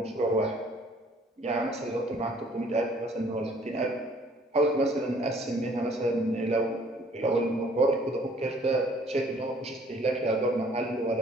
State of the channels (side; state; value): both; normal; correlation 0.58